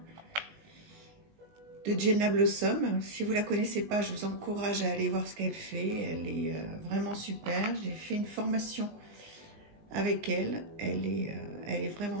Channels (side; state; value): left; late; 19 ms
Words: Jenna Blossom. Si vous ne la connaissez pas, je vous encourage à aller voir ce qu'elle fait. Elle est vraiment super. J'ai fait une formation avec elle. Elle est